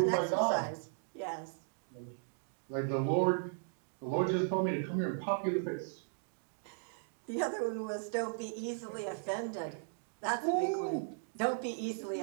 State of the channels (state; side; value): silent; left; digital silence